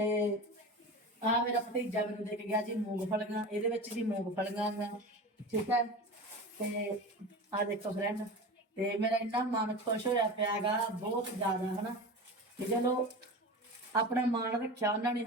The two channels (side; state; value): both; normal; correlation 0.29